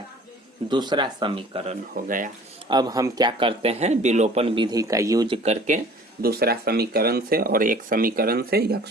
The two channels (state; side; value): normal; both; correlation 0.49